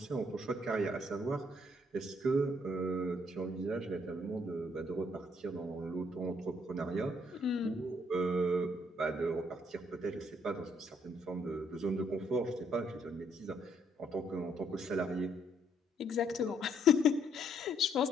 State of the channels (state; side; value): normal; both; correlation 0.69